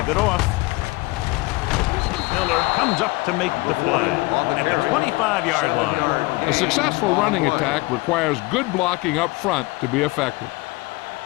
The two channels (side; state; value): right; quieter; 23.3 dB